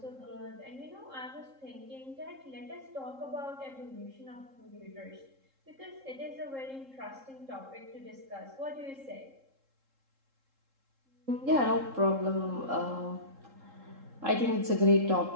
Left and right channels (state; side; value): late; left; 3.7 ms